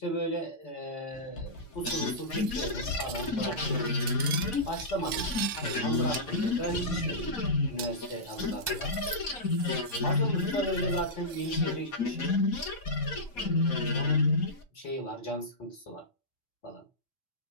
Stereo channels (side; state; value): right; late; 4.2 ms